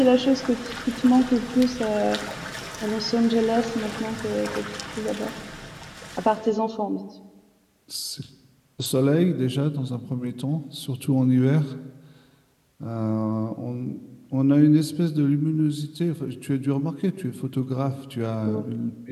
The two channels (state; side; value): identical; both; correlation 1.00